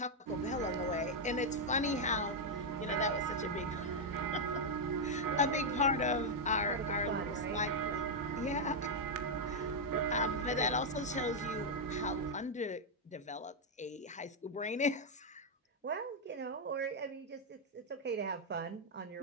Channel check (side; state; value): both; normal; correlation -0.01